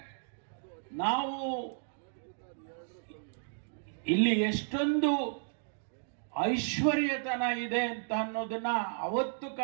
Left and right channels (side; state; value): left; silent; digital silence